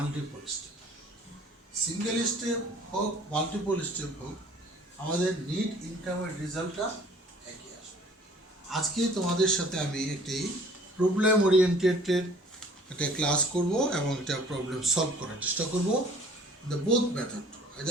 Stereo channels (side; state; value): both; normal; correlation 0.52